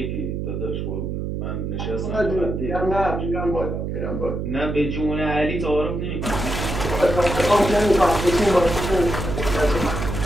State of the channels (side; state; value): right; noise; hum, 3 dB below the sound